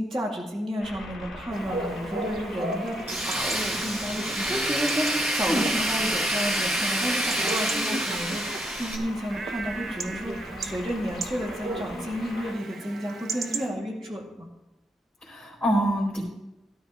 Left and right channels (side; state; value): both; normal; correlation 0.76